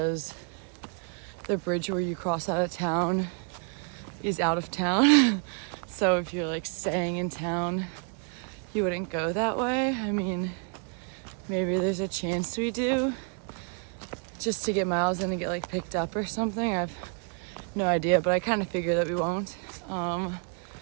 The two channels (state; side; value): quieter; left; 39.6 dB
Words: the bridge where you cross out of town is out of town. So if you're like staying in town, you wouldn't go that way. I mean, maybe there's a chance we do, just to get miles in and get like picked up or something. I have no idea, but I kind of figure that we won't.